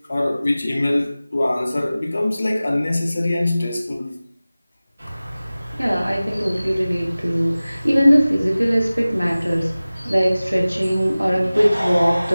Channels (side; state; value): both; inverted; correlation -0.98